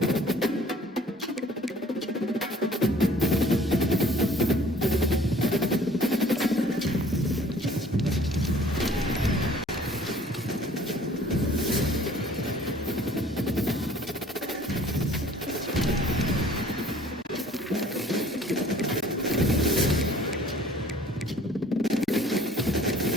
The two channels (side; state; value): both; normal; correlation 0.53